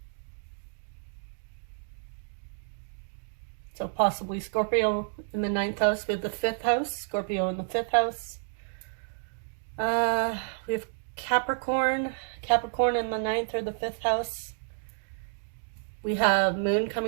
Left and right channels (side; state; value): left; silent; digital silence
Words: So possibly Scorpio in the 9th house. We have the 5th house, Scorpio in the 5th house. We have Capricorn in the 9th or the 5th house. We have moon